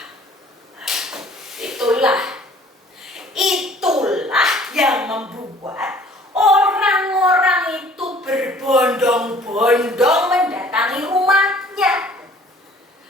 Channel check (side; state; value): both; normal; correlation 0.53